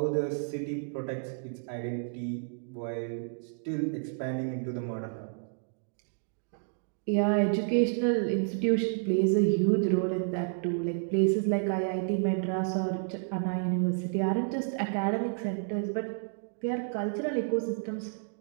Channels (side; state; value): left; silent; digital silence